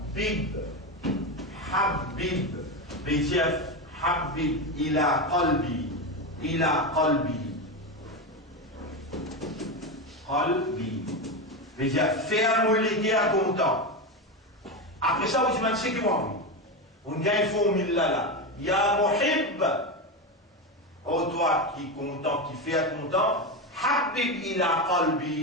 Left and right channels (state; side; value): normal; both; correlation 0.15